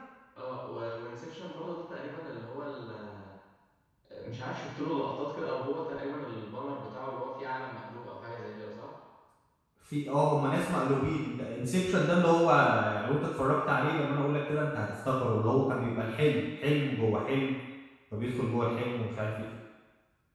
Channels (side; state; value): both; identical; correlation 1.00